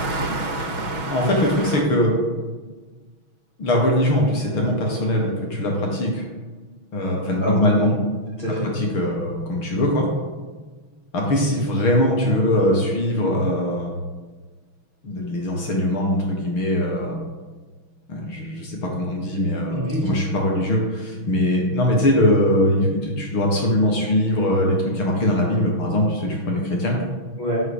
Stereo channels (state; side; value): late; right; 6.2 ms